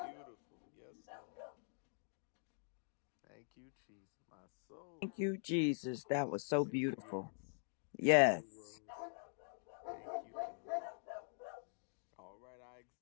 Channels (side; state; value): right; silent; digital silence